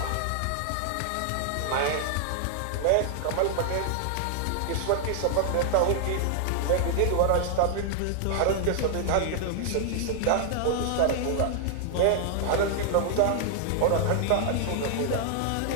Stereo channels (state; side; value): different; both; correlation 0.00